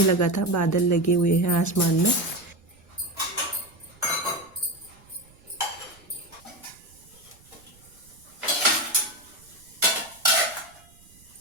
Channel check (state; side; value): noise; right; rumble, 27 dB below the sound